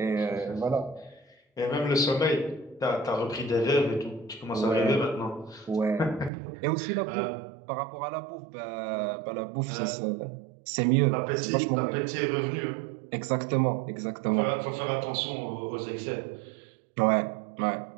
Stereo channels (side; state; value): left; drops out; at 6.3 s